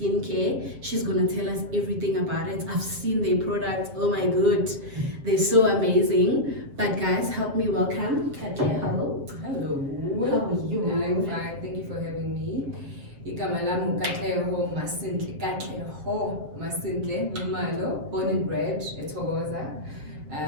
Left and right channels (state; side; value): late; left; 7.5 ms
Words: She's gonna tell us everything about it. I've seen their products. Oh my god, they're so amazing. But guys, help me welcome Katleho. Hello. How are you? I'm fine. Thank you for having me. Igama lami Katleho Nxumalo, born and bred eThokoza.